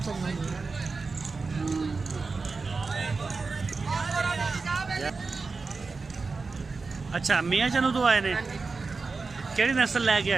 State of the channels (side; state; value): left; quieter; 4.2 dB